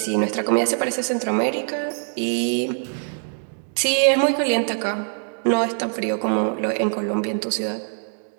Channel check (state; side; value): silent; left; 57 dB below the other